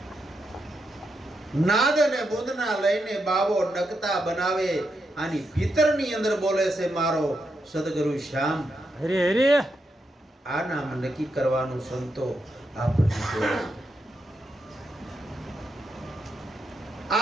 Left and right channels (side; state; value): both; normal; correlation 0.83